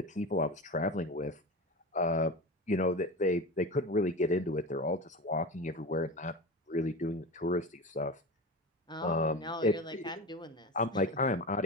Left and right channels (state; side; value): normal; both; correlation 0.27